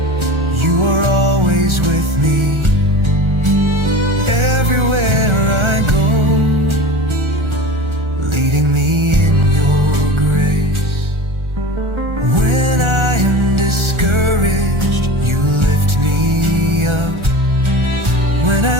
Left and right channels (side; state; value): left; late; 1.4 ms